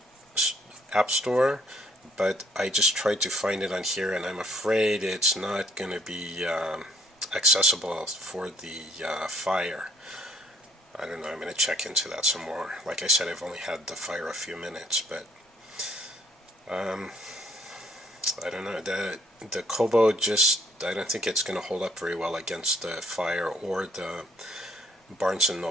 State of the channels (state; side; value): normal; both; correlation 0.64